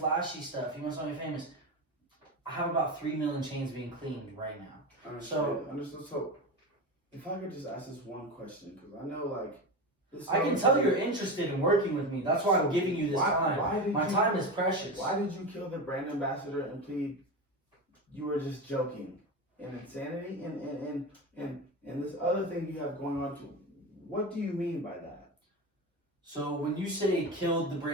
stuff? You must not be famous. I have about 3 million chains being cleaned right now. Understood. So, if I could just ask this one question, because I know, like, I can tell you're interested in working with me. That's why I'm giving you this time. My time is precious. Why did you kill the brand ambassador and plead you were just joking? And insanity and this other thing you have going on too. What do you mean by that? So when you say killed the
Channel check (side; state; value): both; normal; correlation 0.22